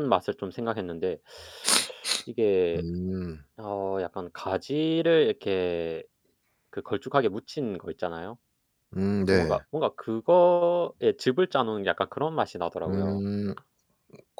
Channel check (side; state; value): both; identical; correlation 1.00